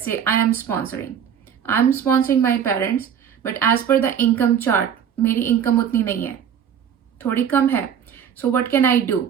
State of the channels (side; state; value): left; quieter; 8.4 dB